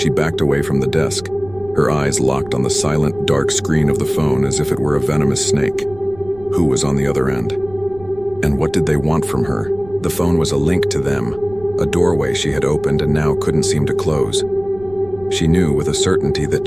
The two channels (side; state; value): right; noise; rumble, 20 dB below the sound